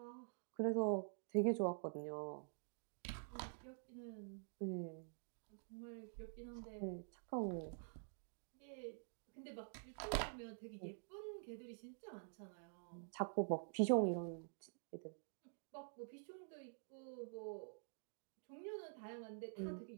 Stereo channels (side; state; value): left; silent; digital silence